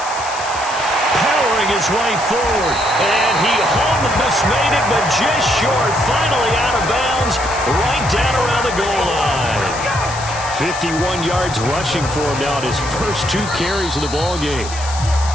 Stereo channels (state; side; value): noise; left; hiss, 11 dB below the sound